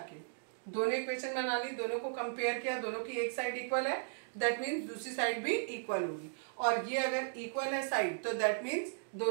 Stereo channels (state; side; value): silent; left; digital silence